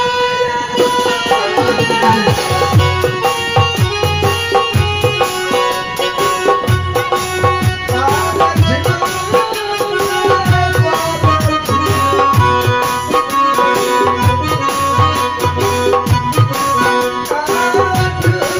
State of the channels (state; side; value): noise; left; rumble, 28 dB below the sound